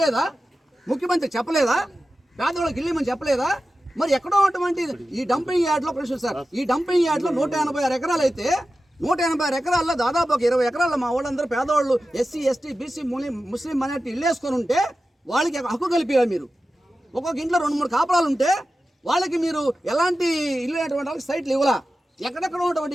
ముఖ్యమంత్రి చెప్పలేదా? పేదవాళ్ళకి ఇల్లేమని చెప్పలేదా? మరి ఎక్కడో ఉన్నటువంటి ఈ డంపింగ్ యార్డ్లో ప్రశ్న సార్, ఈ డంపింగ్ యార్డ్లో 186 ఎకరాలు అయితే 186 ఎకరాల్లో దాదాపు ఒక 20 ఎకరాల్లో మా వాళ్ళందరూ పేదవాళ్ళు ఎస్సీ ఎస్టీ బీసీ ముస్లిం మైనార్టీ ఇల్లు వేసుకొని ఉంటే వాళ్ళకి హక్కు కలిపేయాలి మీరు. ఒక్కొక్క ఇంట్లో 2-3 కాపురాలు ఉంటే వాళ్ళకి మీరు ఎలాంటి ఇల్లు అనేటువంటి వాళ్ళకి సైట్లు ఇవ్వలా. ఎక్కడెక్కడ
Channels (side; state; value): both; normal; correlation 0.93